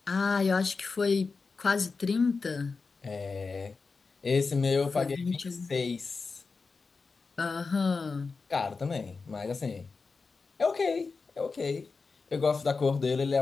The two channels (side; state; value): right; quieter; 4.5 dB